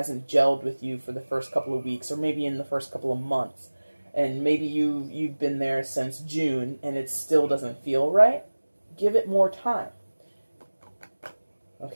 gelled with you for the first couple of weeks, or maybe in the first couple of months, and maybe you've been there since June and it still doesn't feel right, give it more time.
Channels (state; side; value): inverted; both; correlation -1.00